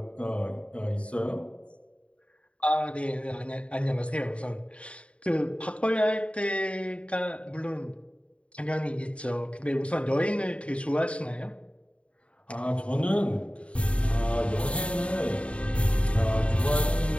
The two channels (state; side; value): late; right; 0.061 ms